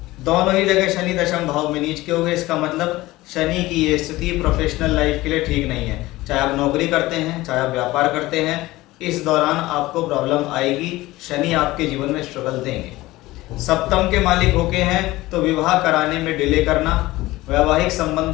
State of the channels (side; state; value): right; quieter; 18.5 dB